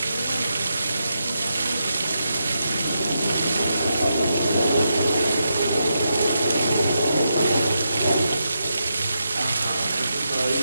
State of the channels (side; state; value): both; inverted; correlation -0.84